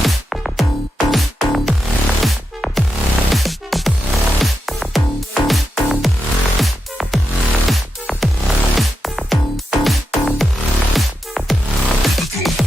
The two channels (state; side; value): normal; both; correlation 0.88